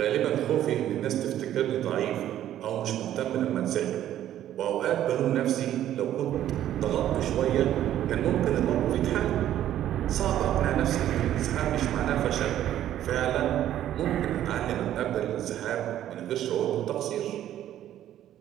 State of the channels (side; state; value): left; quieter; 11.9 dB